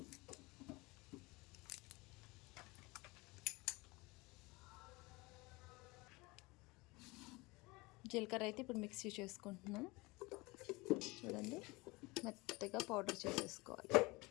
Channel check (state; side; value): quieter; right; 23.8 dB